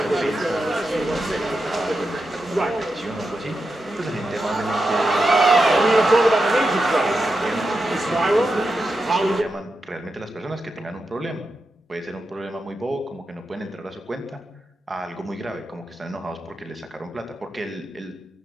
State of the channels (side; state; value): both; normal; correlation 0.88